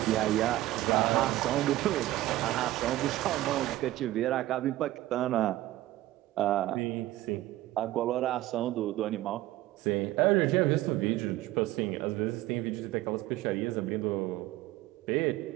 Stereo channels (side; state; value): left; quieter; 16.0 dB